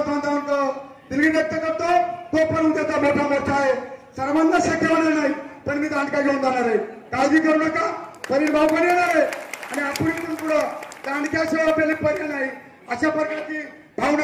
बांधवांना दिलगिरी व्यक्त करतो तो पण उद्याचा मोठा मोर्चा आहे सर्वांना शक्य होणार नाही पण मी दांडका घेऊन जाणार आहे काळजी करू नका परिण भाऊ पण येणार आहे आणि आपण इथून पुढं दांडक्याशिवाय आपल्याला पर्याय नाही अशा प्रकारची भावना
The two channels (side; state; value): both; identical; correlation 1.00